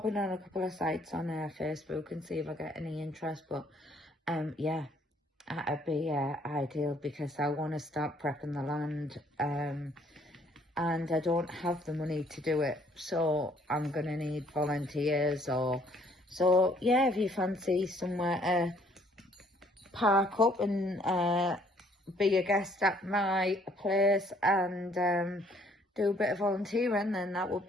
in on a couple of sites on Facebook and see if I get any interest. But yeah, that'd be ideal, because I want to start prepping the land, and I don't have the money to do it, so I'm going to need volunteers. Or so yeah, if you fancy somewhere to park up and be a guest at my place and do a bit of volunteering, then that would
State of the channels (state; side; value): normal; both; correlation 0.63